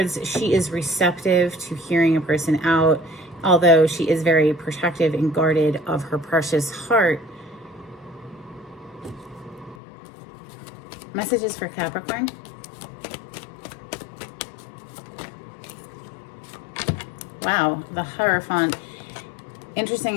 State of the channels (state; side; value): drops out; right; at 9.8 s